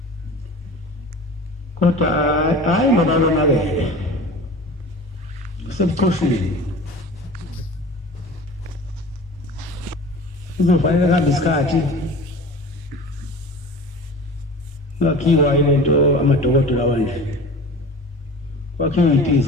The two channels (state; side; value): normal; both; correlation 0.38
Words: kodwa hayi ngoba yonakele usebuchoshini kuzofanele kuhambe isikhathi ngakhiwa ilento amadokotela wanje kwakhiwa